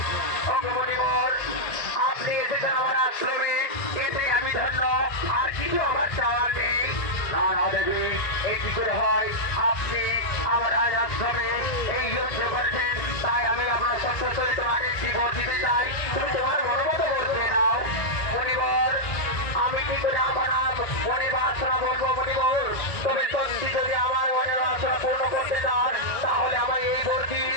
অগ্রমণিবর আপনি এসেছেন আমার আশ্রমে, এতে আমি ধন্য, আর কিছু আমার চাওয়ার নেই। না না দেবী, এই কি করে হয়? আপনি আমার আজ আশ্রমে এই যুদ্ধ করেছেন, তাই আমি আপনার সন্তুষ্ট হয়ে তোমাকে একটি ভোট দিতে চাই, তুমি তোমার মনোমত ভোট দিয়ে নাও। মণিবর আমি কি করে আমার মনে বাসনা বলবো মণিবর, তবে সত্যি যদি আমার মনে বাসনা পূর্ণ করতে চান তাহলে আমার এই ভর্তি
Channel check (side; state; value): right; late; 1.9 ms